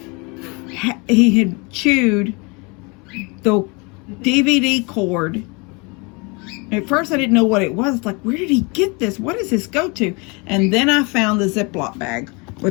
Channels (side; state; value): right; quieter; 29.4 dB